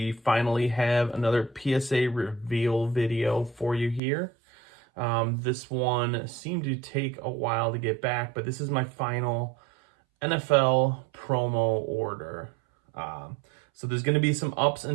finally have another PSA Reveal video for you here. This one seemed to take a while to get back, but this is my final NFL promo order. So there's going to be some ups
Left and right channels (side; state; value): left; drops out; at 4.0 s